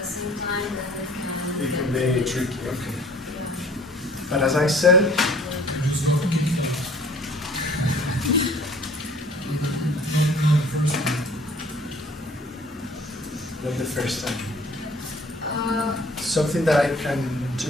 the same time that It can be tricky, okay. Yeah. But as I said, not the first time. Something that I can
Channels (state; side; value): normal; both; correlation 0.52